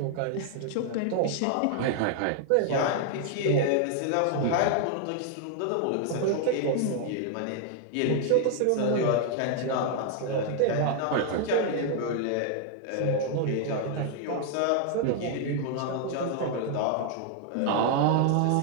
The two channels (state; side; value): different; both; correlation 0.00